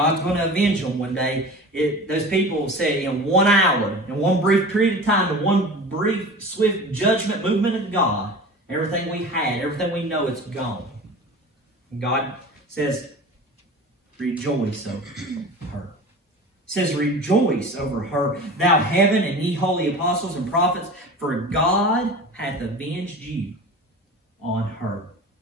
going to avenge them one day. Those people say in 1 hour, in one brief period of time, in one brief, swift judgment movement of God, everything we had, everything we know, it's gone. And God says, rejoice over her. It says, rejoice over her, thou heaven, and ye holy apostles and prophets, for God hath avenged you on her.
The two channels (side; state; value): both; normal; correlation 0.36